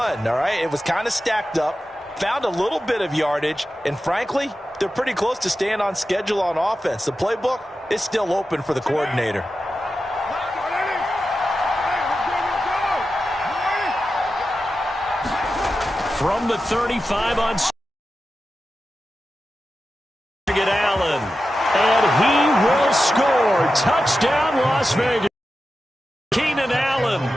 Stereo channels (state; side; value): normal; both; correlation 0.92